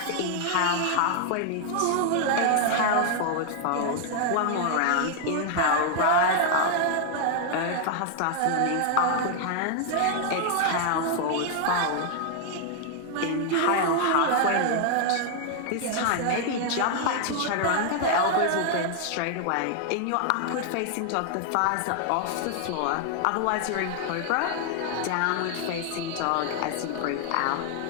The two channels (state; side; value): different; both; correlation 0.00